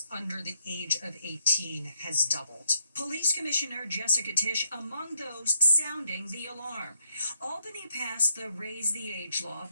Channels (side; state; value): both; inverted; correlation -0.75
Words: under the age of 18 has doubled. Police Commissioner Jessica Tisch among those sounding the alarm. Albany passed the Raise the Age law